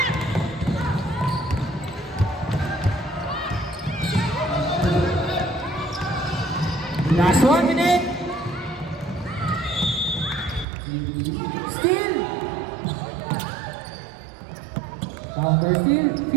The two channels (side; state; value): left; drops out; at 10.7 s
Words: Last 1 minute. Still. Counter still.